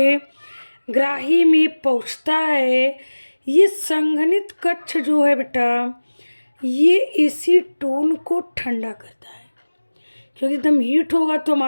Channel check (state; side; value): inverted; both; correlation -1.00